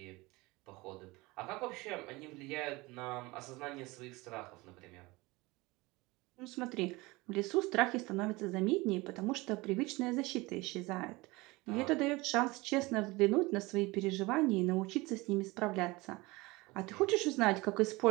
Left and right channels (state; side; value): quieter; left; 22.6 dB